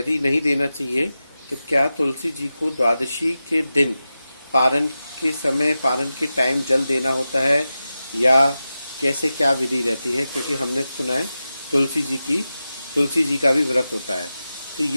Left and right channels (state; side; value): inverted; both; correlation -0.93